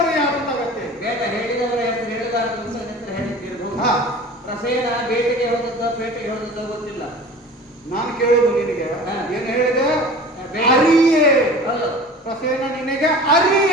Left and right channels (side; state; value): both; normal; correlation 0.40